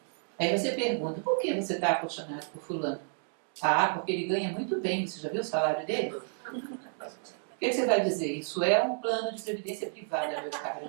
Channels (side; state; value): left; silent; 57 dB below the other